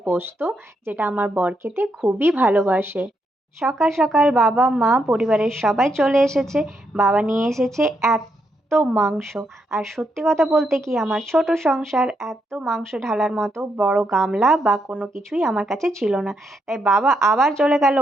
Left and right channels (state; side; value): normal; both; correlation 0.79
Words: পোস্ত, যেটা আমার বর খেতে খুবই ভালোবাসে। সকাল সকাল বাবা মা পরিবারের সবাই চলে এসেছে। বাবা নিয়ে এসেছে এত মাংস। আর সত্যি কথা বলতে কি, আমার ছোট সংসার, এত মাংস ঢালার মতো বড় গামলা বা কোনো কিছুই আমার কাছে ছিল না। তাই বাবা আবার চলে গেল